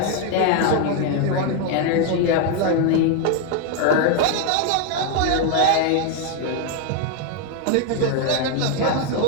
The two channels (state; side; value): different; both; correlation 0.01